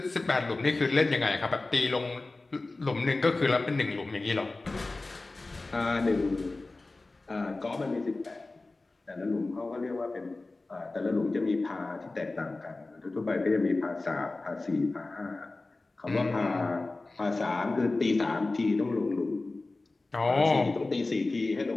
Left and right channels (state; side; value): quieter; right; 3.3 dB